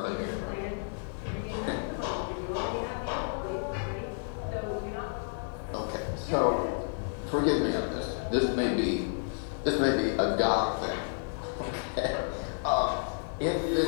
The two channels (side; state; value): right; silent; digital silence